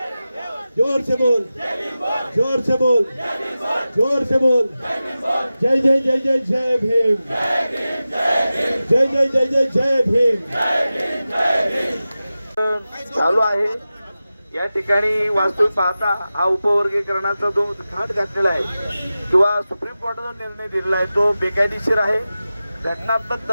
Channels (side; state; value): both; inverted; correlation -0.95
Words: जोर से बोल, जोर से बोल, जोर से बोल। जय जय जय जय जय भीम, जय जय जय जय जय भीम। चालू आहे। या ठिकाणी वास्तविक पाहता हा उपवर्गीकरणाचा जो घाट घातलेला आहे किंवा सुप्रीम कोर्टाचा निर्णय दिलेला आहे तो बेकायदेशीर आहे, घटनात्मक